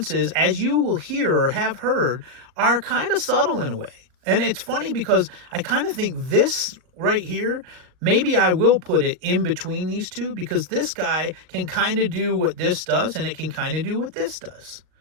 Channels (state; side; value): late; left; 39 ms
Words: as you will hear or have heard, are kind of subtle in a way. And it's funny because I kind of think this right here, maybe I will put it in between these two, because this guy can kind of do what this does and it can kind of do what this does.